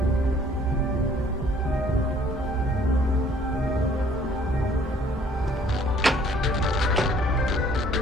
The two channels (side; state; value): both; normal; correlation 0.58